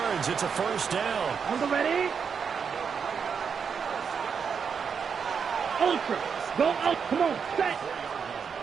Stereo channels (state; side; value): quieter; left; 6.5 dB